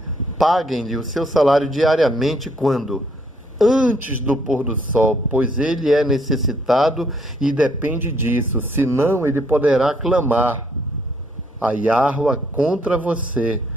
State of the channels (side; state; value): both; normal; correlation 0.68